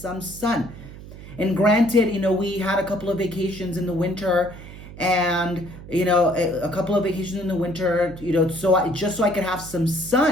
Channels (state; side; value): noise; right; hum, 15 dB below the sound